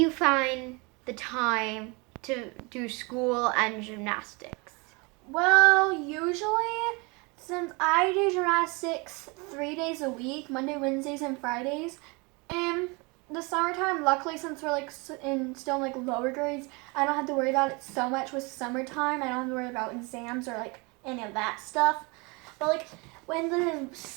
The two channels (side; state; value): left; quieter; 28.5 dB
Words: find the time to do school and gymnastics? Well, usually, since I do gymnastics 3 days a week, Monday, Wednesdays, and Fridays, and the summertime, luckily, since we're still in lower grades, I don't have to worry about it so much with summertime. I don't have to worry about exams or any of that stuff. But when the